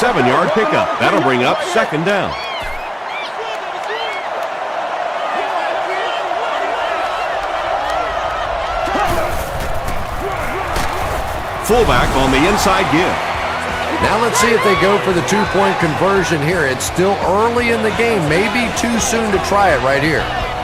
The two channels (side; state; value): both; identical; correlation 1.00